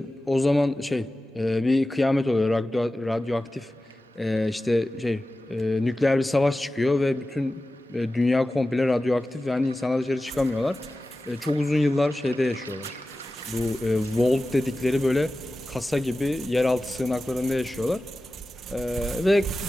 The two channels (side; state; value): both; normal; correlation 0.95